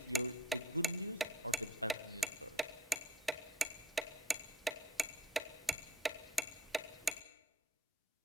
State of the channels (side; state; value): both; normal; correlation 0.49